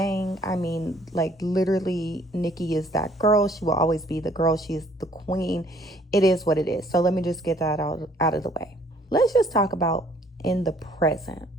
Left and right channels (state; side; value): normal; both; correlation 0.60